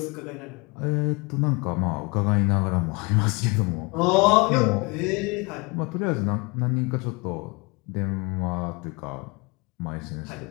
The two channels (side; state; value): right; quieter; 27.8 dB